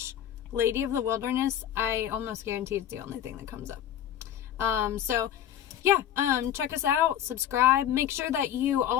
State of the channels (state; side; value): quieter; right; 10.6 dB